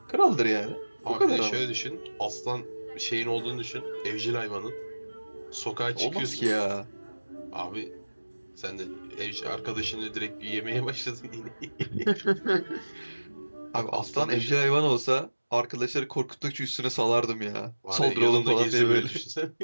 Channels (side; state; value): both; inverted; correlation -1.00